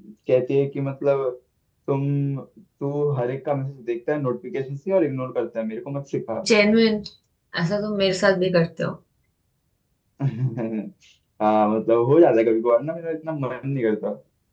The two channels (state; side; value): identical; both; correlation 1.00